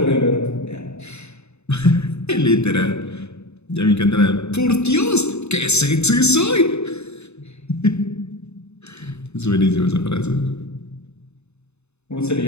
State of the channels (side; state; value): right; late; 0.81 ms